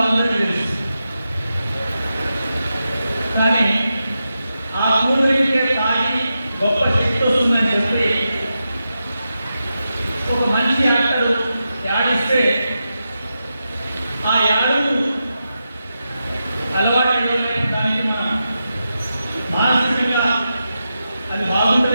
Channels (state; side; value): inverted; both; correlation -0.89